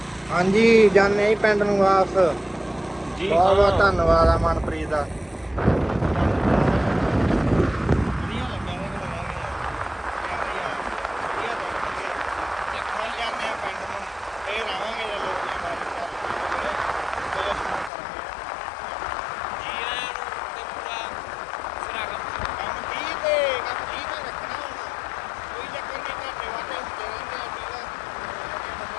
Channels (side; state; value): right; drops out; at 17.9 s